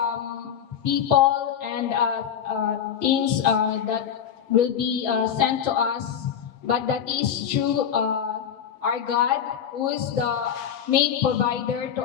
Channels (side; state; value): right; quieter; 8.5 dB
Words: people and things that will be sent to us, but that is through our God, who is the main provider to